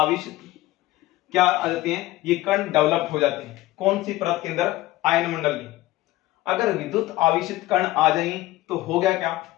क्या आ जाते हैं, ये कण डेवलप हो जाते हैं। कौन सी परत के अंदर, आयन मंडल की। अगर विद्युत आवेशित कण आ जाएंगे तो होगा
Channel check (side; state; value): right; quieter; 17.3 dB